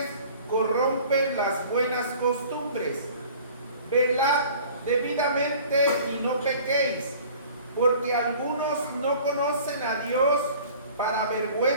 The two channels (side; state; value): both; inverted; correlation -0.47